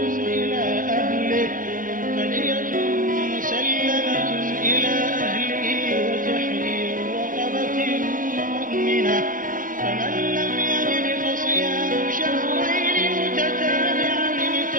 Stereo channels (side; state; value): left; late; 0.40 ms